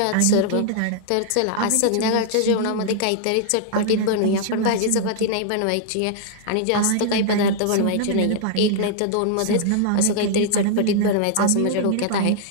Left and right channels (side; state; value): both; different; correlation -0.01